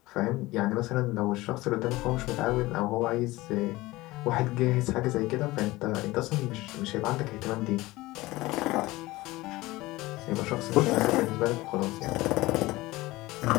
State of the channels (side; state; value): right; quieter; 19.6 dB